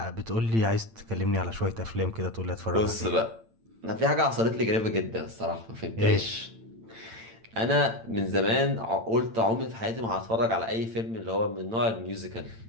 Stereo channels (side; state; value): left; late; 8.9 ms